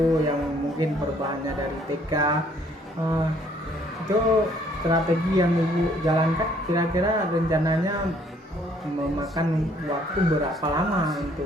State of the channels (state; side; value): normal; both; correlation 0.63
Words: yang mungkin perubahannya dari TK. Itu strategi yang ibu jalankan kira-kira rencananya memakan waktu berapa lama